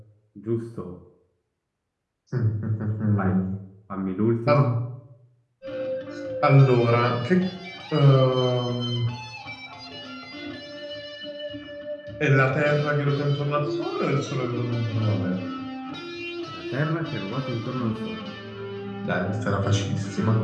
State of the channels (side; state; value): both; identical; correlation 1.00